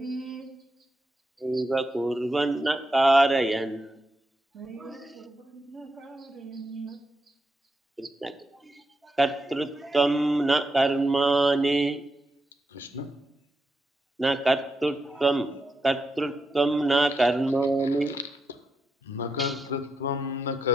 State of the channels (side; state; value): both; normal; correlation 0.85